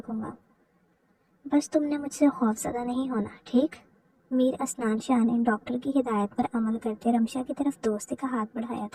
گا، بس تم نے مجھ سے خوف زدہ نہیں ہونا، ٹھیک؟ میر اسنان شاہ نے ڈاکٹر کی ہدایت پر عمل کرتے رمشا کی طرف دوستی کا ہاتھ بڑھایا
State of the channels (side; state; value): both; identical; correlation 1.00